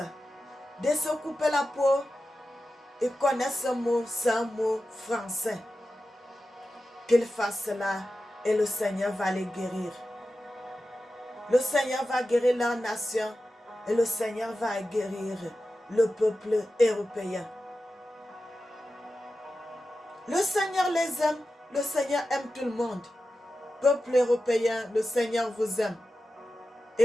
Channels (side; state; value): both; normal; correlation 0.93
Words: de se couper la peau et connaître ce mot, c'est un mot français. Qu'ils fassent cela et le Seigneur va les guérir. Le Seigneur va guérir leur nation et le Seigneur va guérir le peuple européen. Le Seigneur les aime, le Seigneur aime tout le monde. Peuple européen, le Seigneur vous aime.